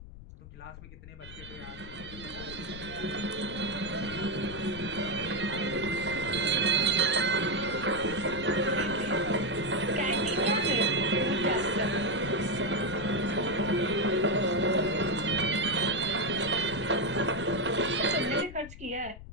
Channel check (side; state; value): left; noise; rumble, 15 dB below the sound